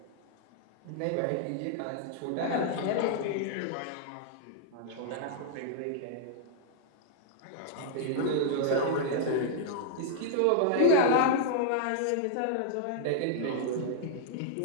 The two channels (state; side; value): different; both; correlation -0.01